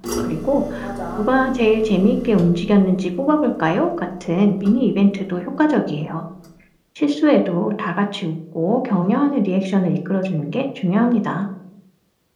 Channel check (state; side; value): identical; both; correlation 1.00